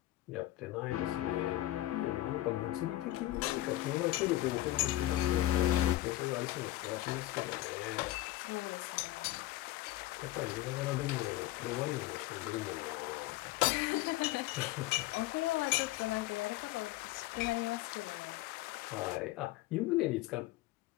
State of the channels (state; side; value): quieter; right; 16.0 dB